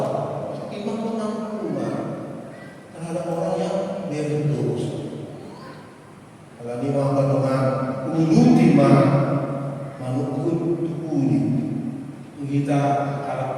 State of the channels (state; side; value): identical; both; correlation 1.00